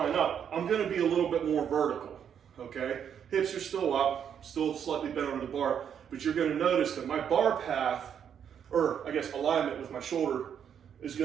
up, I'm gonna be a little bit more vertical, okay? Hips are still up, still slightly bent over the bar, but you're gonna notice that my bar path, or I guess alignment with my shoulder, is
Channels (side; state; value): left; quieter; 8.3 dB